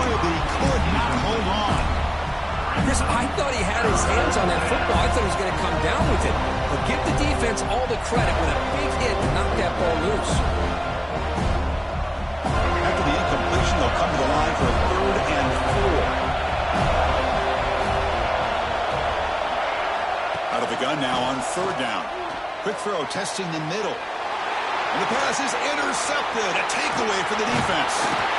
but he could not hold on. Chris, I thought he had his hands on that football. I thought he was going to come down with it. But give the defense all the credit with a big hit to knock that ball loose. After the incomplete third down. Quick throw testing the middle. And the pass is intercepted. A takeaway for the defense.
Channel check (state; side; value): identical; both; correlation 1.00